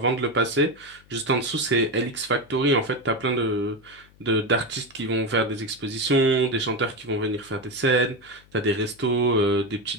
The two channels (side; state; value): left; noise; hum, 28 dB below the sound